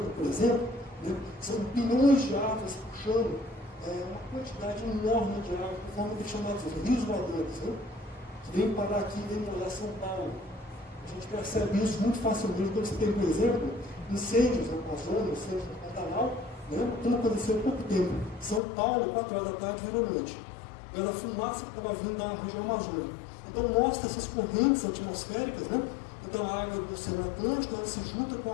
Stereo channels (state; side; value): drops out; right; at 18.6 s